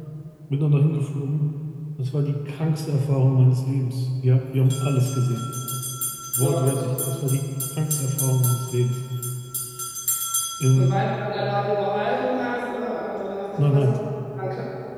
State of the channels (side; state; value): both; identical; correlation 1.00